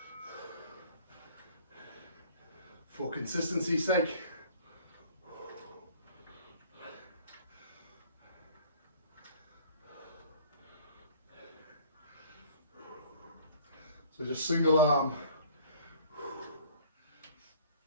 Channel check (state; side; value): inverted; both; correlation -0.52